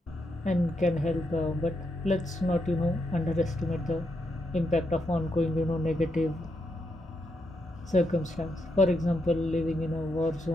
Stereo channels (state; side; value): normal; both; correlation 0.81